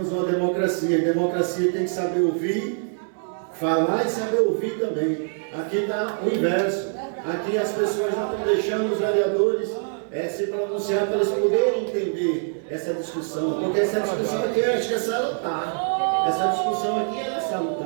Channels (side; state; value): left; silent; digital silence